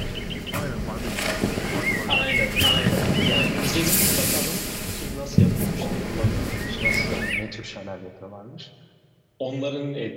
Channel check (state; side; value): identical; both; correlation 1.00